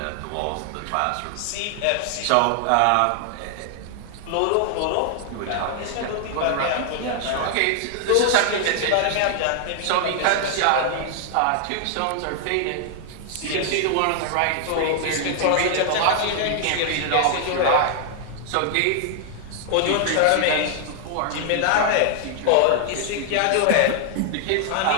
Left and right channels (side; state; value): both; different; correlation 0.00